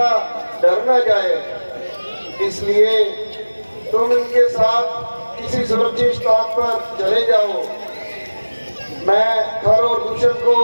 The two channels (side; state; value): both; inverted; correlation -1.00